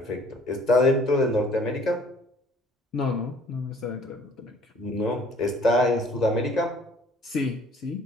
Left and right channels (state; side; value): normal; both; correlation 0.56